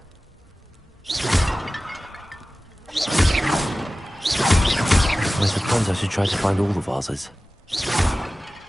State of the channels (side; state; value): both; normal; correlation 0.96